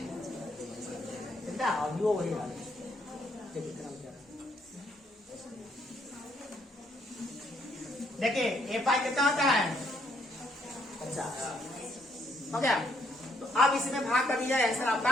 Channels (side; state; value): both; normal; correlation 0.70